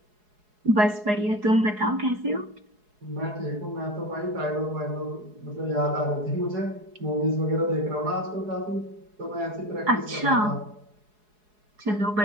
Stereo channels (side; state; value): left; late; 4.8 ms